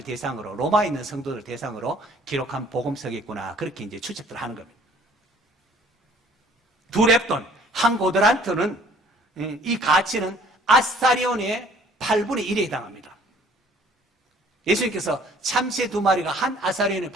대상으로, 로마에 있는 성도들 대상으로 기록한 복음서겠구나, 그렇게 이제 추측들 하는 겁니다. 2렙돈, 한 고드란트는, 이 가치는 아스타리온의 8분의 1에 해당합니다. 예수님께서 참새 2마리가 한 아사리온에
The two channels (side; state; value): both; normal; correlation 0.56